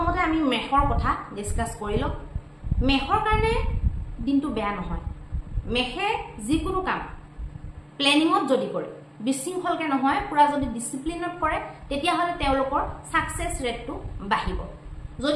আমি মেষৰ কথা ডিসকাস কৰি লওঁ। মেষৰ কাৰণে দিনটো বেয়া নহয়। মেষে যিকোনো কাম প্লেনিঙত যদি কৰে, বিশৃংখলকে নহয়, পুৰা যদি ডিসিপ্লিনত কৰে, তেতিয়াহ'লে তেওঁলোকৰ সাকসেস ৰেটটো বাঢ়িব।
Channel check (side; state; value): both; identical; correlation 1.00